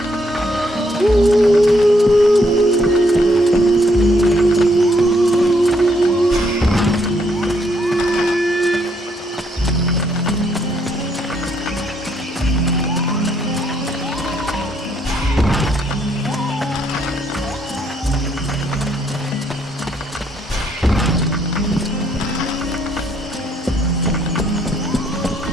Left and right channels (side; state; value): both; normal; correlation 0.72